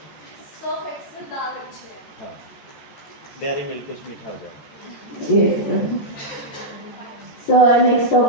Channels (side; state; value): right; late; 14 ms